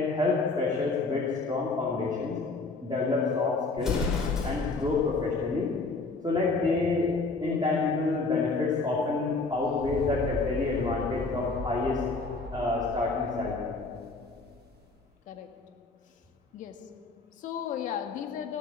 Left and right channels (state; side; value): quieter; right; 3.7 dB